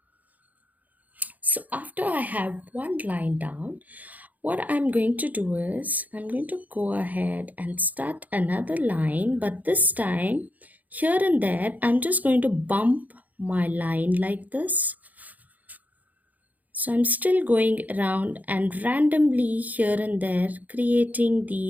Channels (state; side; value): late; left; 0.079 ms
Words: So after I have one line down, what I'm going to do is I'm going to go ahead and start another line, but this time here and there I'm just going to bump my line like this. So I'm still going around and randomly here and there creating